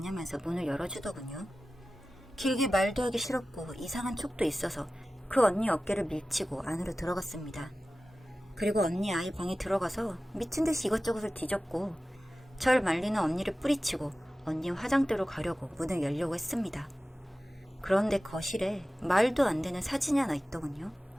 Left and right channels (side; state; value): both; normal; correlation 0.95